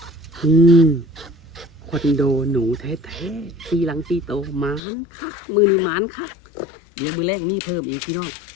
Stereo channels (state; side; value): drops out; right; at 4.8 s